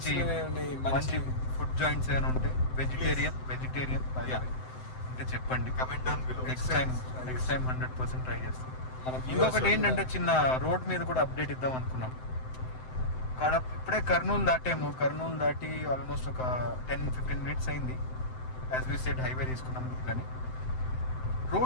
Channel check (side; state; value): right; late; 7.8 ms